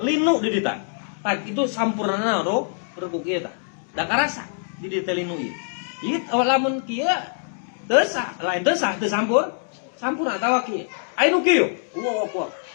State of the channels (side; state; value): right; silent; digital silence